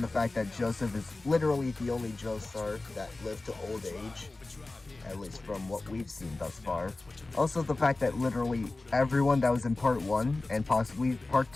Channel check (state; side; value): quieter; right; 3.2 dB